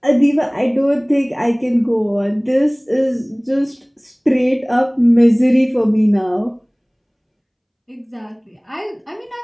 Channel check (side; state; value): both; identical; correlation 1.00